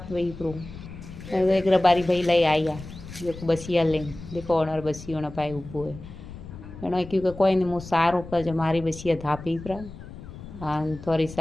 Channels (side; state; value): left; noise; rumble, 14 dB below the sound